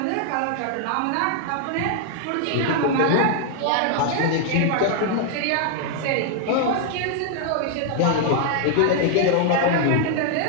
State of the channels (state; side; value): different; both; correlation 0.00